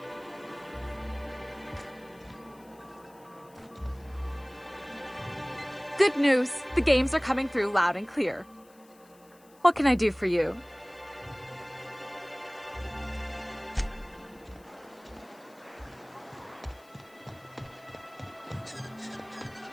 Good news! The games are coming through loud and clear. What can I do for you?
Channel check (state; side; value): noise; left; hiss, 28 dB below the sound